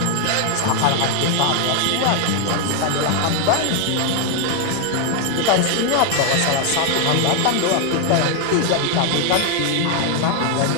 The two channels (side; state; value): both; different; correlation 0.01